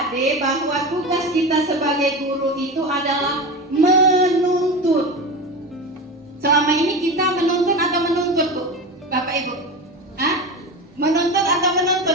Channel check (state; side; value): normal; both; correlation 0.25